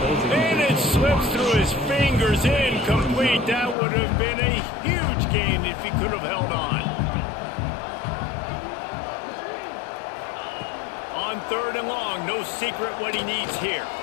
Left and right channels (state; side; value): drops out; right; at 3.8 s